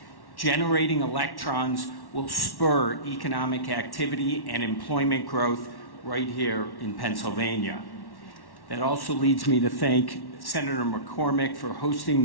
Generating electrons will spur economic activity and employment growth right here in Pennsylvania. That also leads me to thank Senator McCormick for hosting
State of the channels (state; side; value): late; right; 1.1 ms